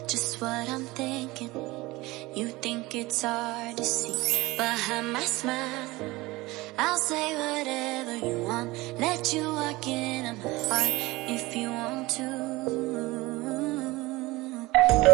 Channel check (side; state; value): left; quieter; 20.9 dB